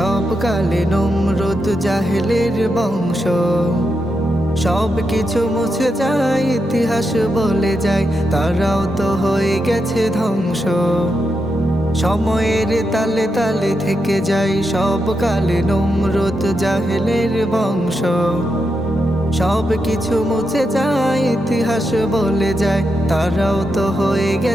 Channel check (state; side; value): normal; both; correlation 0.85